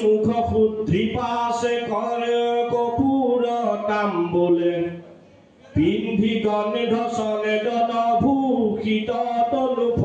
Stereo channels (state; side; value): identical; both; correlation 1.00